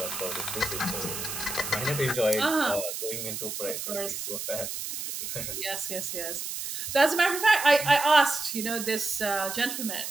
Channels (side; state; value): right; noise; hiss, 5 dB below the sound